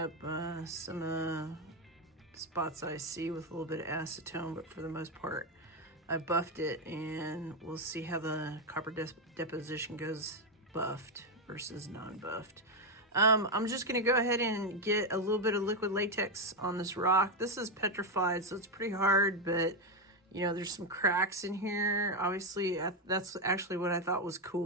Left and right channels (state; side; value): normal; both; correlation 0.07